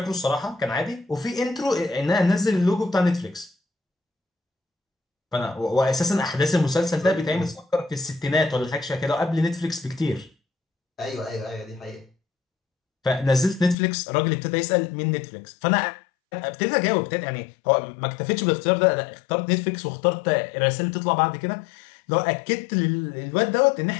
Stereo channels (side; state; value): right; drops out; at 13.8 s